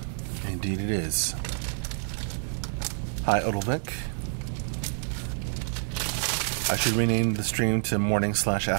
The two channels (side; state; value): left; silent; digital silence